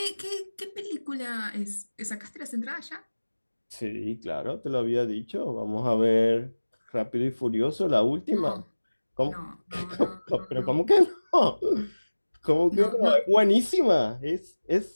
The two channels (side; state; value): both; inverted; correlation -1.00